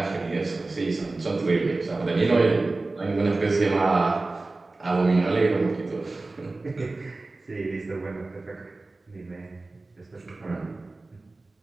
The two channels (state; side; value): quieter; left; 3.3 dB